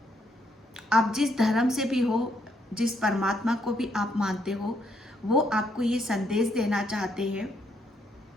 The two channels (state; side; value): normal; both; correlation 0.74